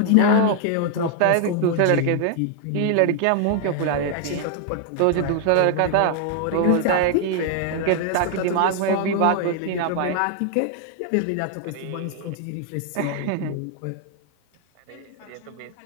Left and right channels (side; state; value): both; different; correlation 0.00